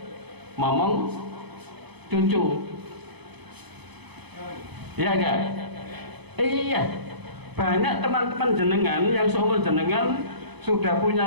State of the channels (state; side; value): late; left; 0.99 ms